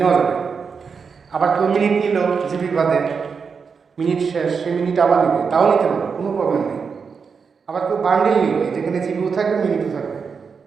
যাবে। আবার কেউ মিনিট নিল জিবি বাদে, মিনিট শেষ, সে মিনিট আবার নিবে, তাও নিতে পারবে, কোনো প্রবলেম নেই। আবার কেউ বান্ডিল নিল, যেখানে জিবিও থাকবে মিনিটও থাকবে,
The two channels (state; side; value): quieter; left; 5.7 dB